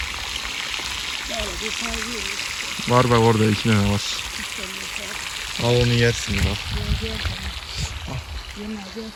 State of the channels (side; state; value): both; identical; correlation 1.00